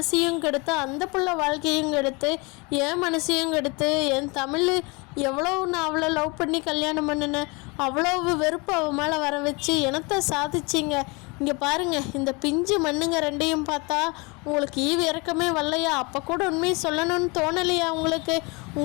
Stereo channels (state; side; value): quieter; right; 28.2 dB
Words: கெடுத்து, அந்த புள்ள வாழ்க்கையும் கெடுத்து, என் மனசையும் கெடுத்து, என் தமிழ் எவ்வளோ நான் அவளை லவ் பண்ணி கல்யாணம் பண்ணினேன், அவ்வளோ வெறுப்பு அவள் மேலே வர வச்சு எனத்தை சாதிச்சிங்க. இங்கே பாருங்கள், இந்த பிஞ்சு மண்ணுங்க 2ஐயும் பார்த்தா உங்களுக்கு ஈவு இறக்கமே வரலையா, அப்போ கூட உண்மையை சொல்லணும்னு தோணலையா உங்களுக்கு,